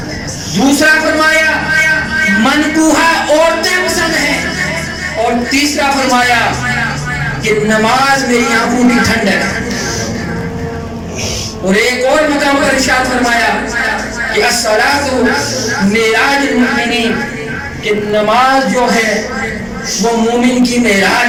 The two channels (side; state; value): both; identical; correlation 1.00